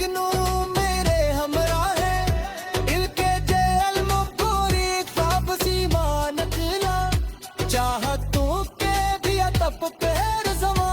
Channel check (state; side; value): identical; both; correlation 1.00